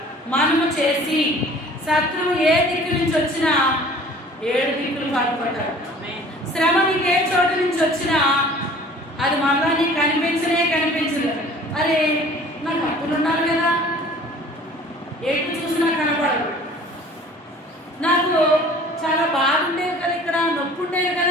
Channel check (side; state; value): both; normal; correlation 0.48